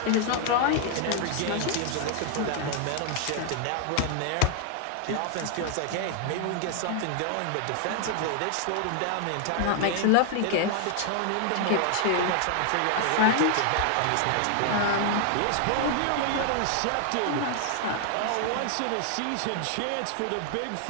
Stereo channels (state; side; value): different; both; correlation 0.00